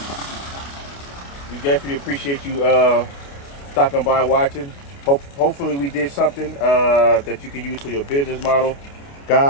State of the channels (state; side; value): late; right; 29 ms